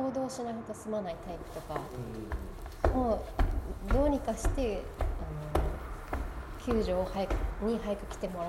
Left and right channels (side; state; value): both; identical; correlation 1.00